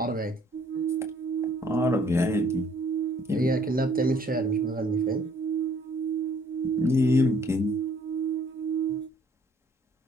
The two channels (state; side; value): normal; both; correlation 0.60